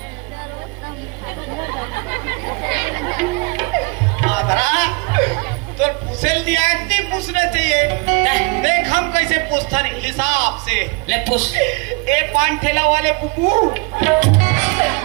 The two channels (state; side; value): quieter; left; 29.1 dB